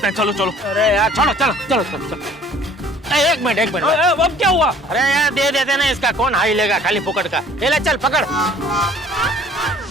हैं। चलो चलो। अरे यार छोड़ो, चलो चलो चलो चलो। एक मिनट अब क्या हुआ? अरे यार दे देते ना, इसका कौन हाई लेगा खाली फुकट का। ले चल पकड़।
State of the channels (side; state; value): both; normal; correlation 0.53